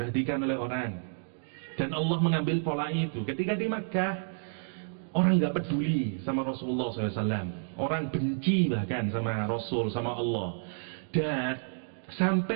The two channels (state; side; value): silent; left; digital silence